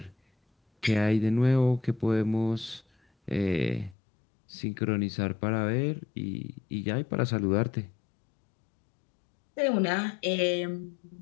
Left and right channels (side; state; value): right; drops out; at 4.0 s